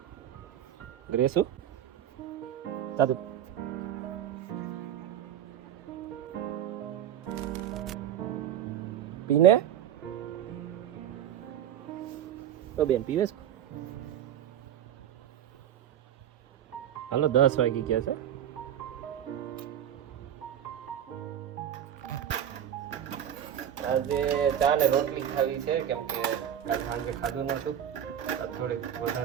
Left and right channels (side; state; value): left; quieter; 10.1 dB